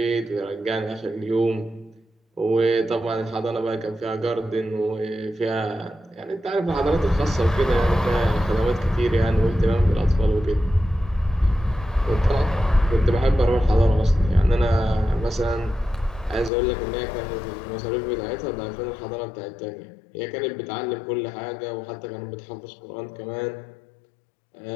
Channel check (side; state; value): right; drops out; at 16.5 s